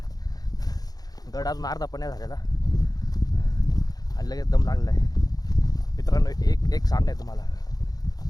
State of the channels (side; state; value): right; late; 0.19 ms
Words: अजून अर्धा पण नाही झालेला, आणि लगेच दम लागलेला आहे. मित्रांनो, एक सांगणं आहे तुम्हाला,